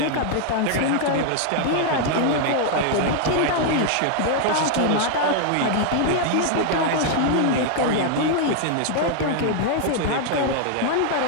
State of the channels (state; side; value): different; both; correlation 0.00